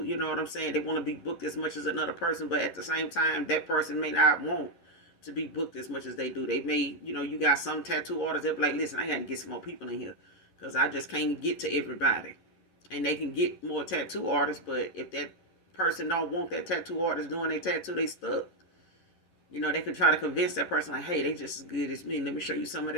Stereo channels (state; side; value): late; right; 10 ms